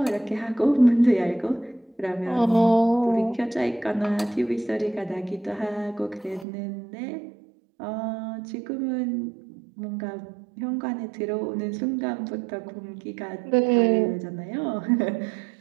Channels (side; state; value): left; drops out; at 6.5 s